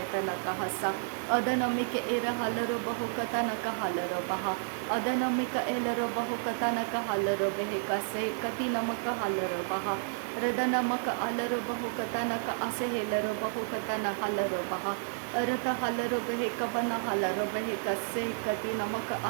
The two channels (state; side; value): silent; left; 57 dB below the other